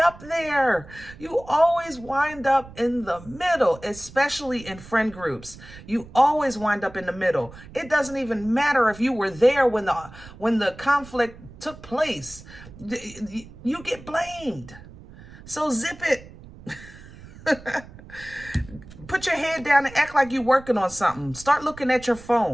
there. You always wind up in the middle, especially in friend groups. You always wind up in the middle. It doesn't even matter if you were there when the conflict took place. You get blamed. So zip it. Put your head down and act like you're working on something. Start looking at your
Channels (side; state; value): right; noise; rumble, 18 dB below the sound